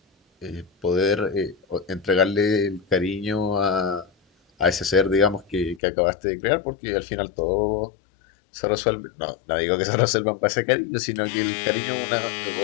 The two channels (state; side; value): drops out; right; at 5.8 s